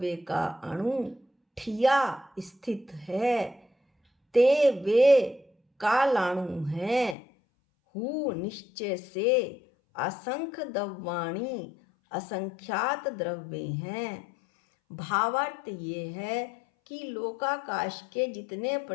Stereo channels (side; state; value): right; drops out; at 7.2 s